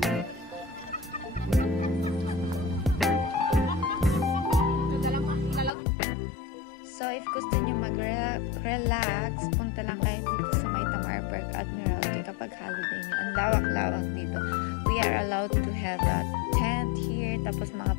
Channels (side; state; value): right; drops out; at 5.7 s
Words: So, if gusto nyo mag-relax, punta lang kayo dito sa may Tamar Park Admiralty kapag holiday nyo. Ang lawak-lawak dito. We are allowed to have a tent here. Tapos mga